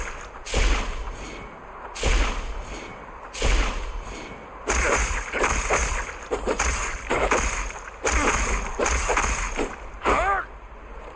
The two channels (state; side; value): identical; both; correlation 1.00